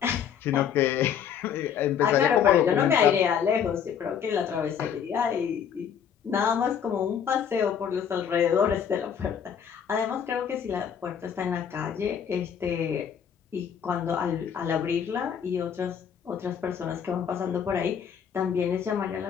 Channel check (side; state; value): right; quieter; 8.1 dB